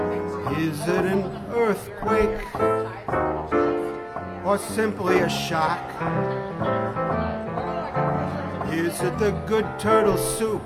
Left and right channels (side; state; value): both; identical; correlation 1.00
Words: Is it an earthquake or simply a shock? Is it the good turtle soup